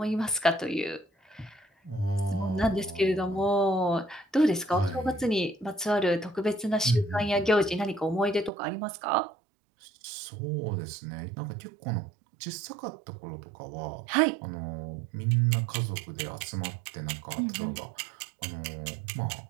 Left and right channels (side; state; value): left; drops out; at 8.5 s